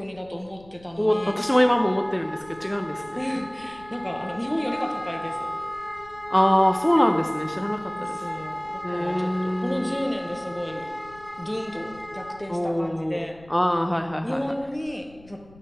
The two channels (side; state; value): left; noise; rumble, 24 dB below the sound